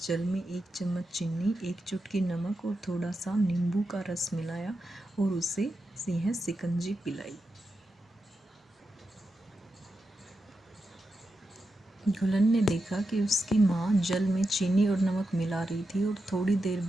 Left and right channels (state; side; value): normal; both; correlation 0.88